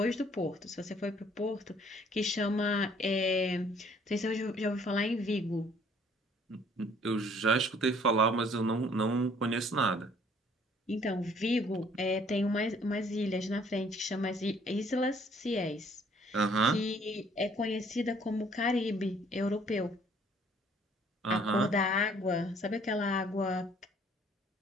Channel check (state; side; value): normal; both; correlation 0.60